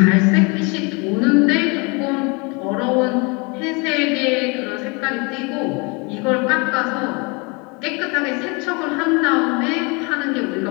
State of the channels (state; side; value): quieter; right; 29.9 dB